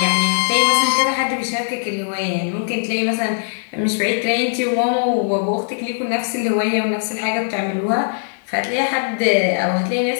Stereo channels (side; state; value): right; silent; digital silence